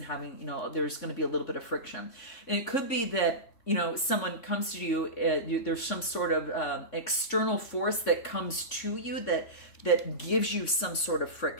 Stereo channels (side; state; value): right; late; 3.6 ms